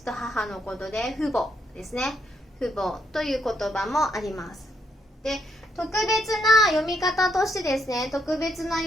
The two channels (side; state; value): both; normal; correlation 0.76